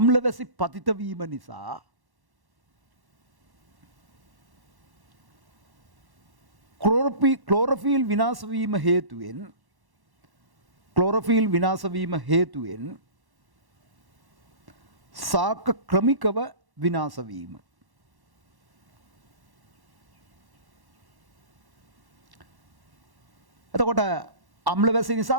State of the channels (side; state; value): left; late; 1.1 ms